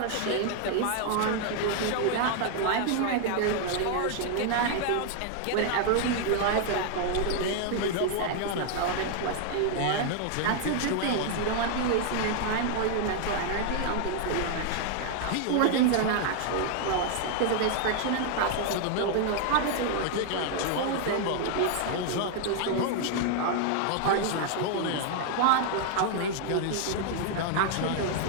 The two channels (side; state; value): both; different; correlation 0.00